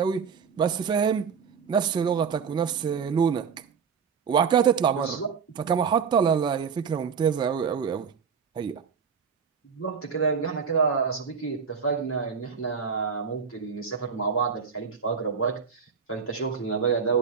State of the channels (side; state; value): left; quieter; 6.3 dB